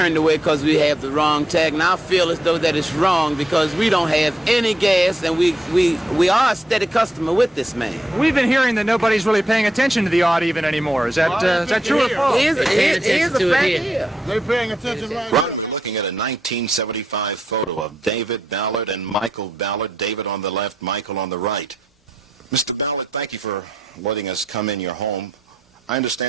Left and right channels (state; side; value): normal; both; correlation 0.81